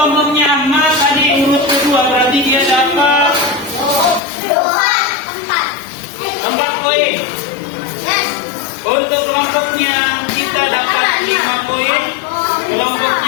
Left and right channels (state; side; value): drops out; right; at 4.2 s